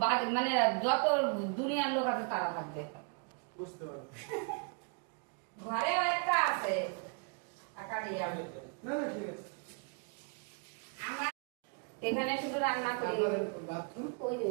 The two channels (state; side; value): quieter; left; 37.3 dB